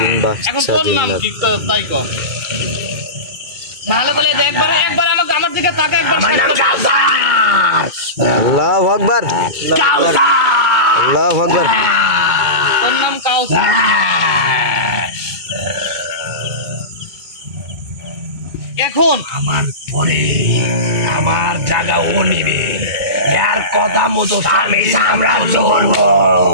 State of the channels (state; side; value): late; left; 2.2 ms